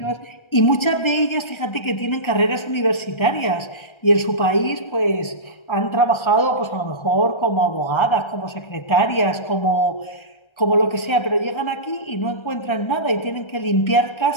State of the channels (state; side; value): late; right; 1.3 ms